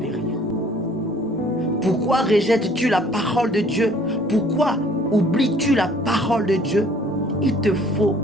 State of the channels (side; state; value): both; normal; correlation 0.56